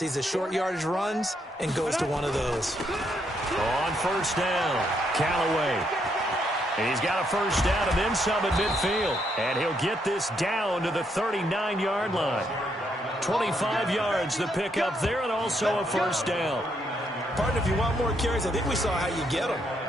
the short yardage runs, and goes to one of those. On 1st down, Callaway. He's got a first down and then some at midfield. And he'll get this down to the 39-yard line. 25 yards the pickup there, and also a first down. Partner, if you want more carries, I think we saw how you get them.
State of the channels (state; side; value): normal; both; correlation 0.75